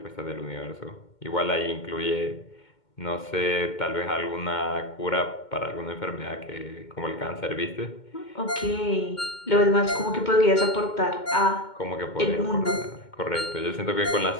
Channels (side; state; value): right; late; 2.2 ms